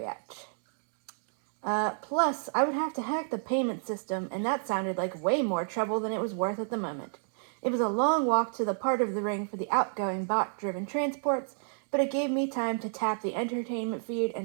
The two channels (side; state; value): left; silent; digital silence